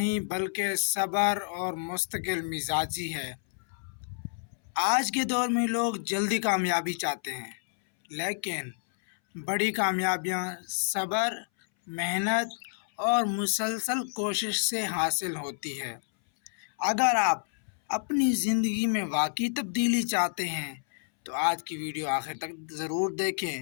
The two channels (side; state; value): right; silent; 58 dB below the other